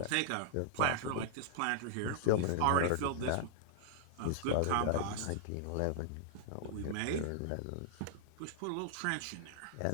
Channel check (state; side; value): different; both; correlation -0.01